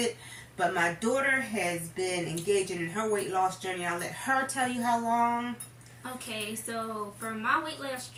But my daughter has been engaging in her weight loss journey. I'll let her tell you how long. Okay, so for my weight loss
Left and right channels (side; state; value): both; identical; correlation 1.00